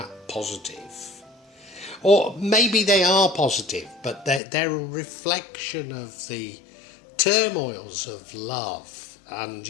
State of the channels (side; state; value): right; drops out; at 4.4 s